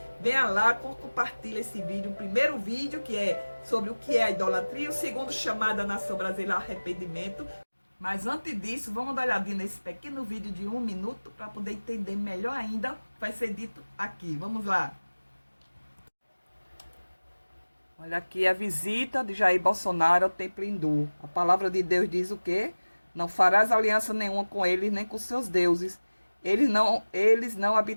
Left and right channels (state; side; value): inverted; both; correlation -1.00